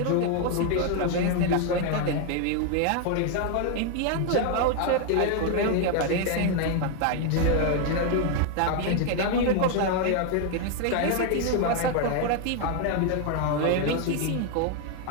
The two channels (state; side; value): different; both; correlation 0.00